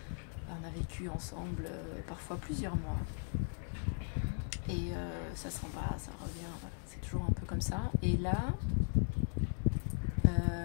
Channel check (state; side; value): silent; right; 53 dB below the other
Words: On a vécu ensemble parfois plusieurs mois. Et ça s'en va, ça revient, voilà. C'est toujours un peu comme ça. Et là,